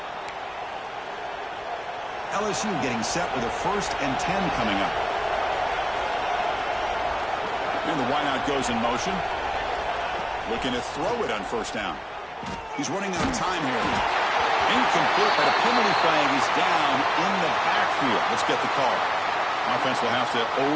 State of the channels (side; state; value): both; identical; correlation 1.00